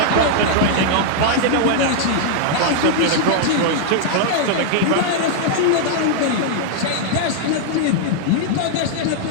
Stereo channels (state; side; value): different; both; correlation -0.01